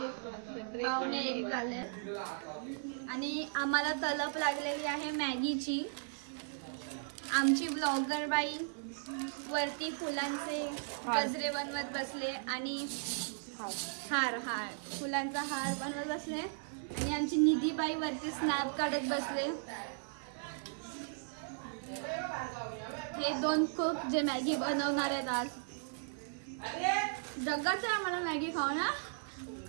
पावणे 1 झाले आणि आम्हाला तलप लागलेली आहे मॅगीची. आमची ब्लॉगर बाई वरती फुलांचे गजरे बनवत बसले आणि हार फुलांचा हार बनवत बसले आणि आमची निधी बाई वरती स्नॅप काढत बसले. हे 2 कुक जे मॅगी बनवणार आहेत आज. जगाच आहे आम्हाला मॅगी खाऊ ना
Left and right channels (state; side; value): silent; left; 53 dB below the other